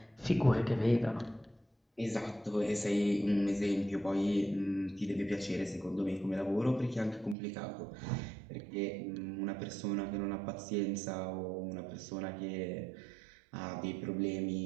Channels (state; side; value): drops out; left; at 7.4 s